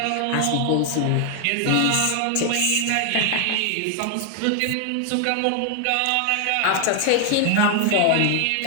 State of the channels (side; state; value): both; different; correlation 0.00